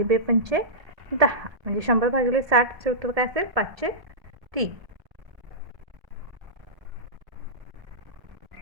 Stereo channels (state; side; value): late; left; 1.4 ms